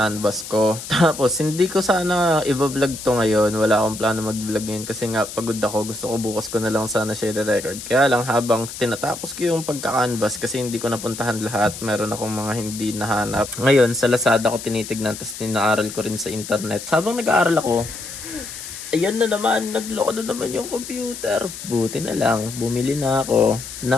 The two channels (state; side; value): noise; left; hiss, 11 dB below the sound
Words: ko. Tapos, hindi ko sana i-vlog to ngayon. Wala akong plano mag-vlog ngayon. Kasi nga, pagod ako. Gusto ko bukas ko na lang sana share record. Kaya lang, habang tinatapos ko yung pagka-canvas, kasi hindi ko napuntahan lahat. Meron akong mga hindi nahanap. Ngayon, sa Lazada ko tinitignan. Tapos, ninaaral ko rin sa internet. Habang nag-aaral ako, ayan na naman, nagloko na naman yung computer. Buti na lang, bumili na ako